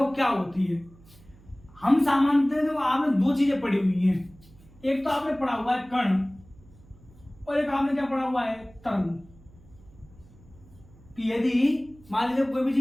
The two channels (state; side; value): noise; right; hum, 25 dB below the sound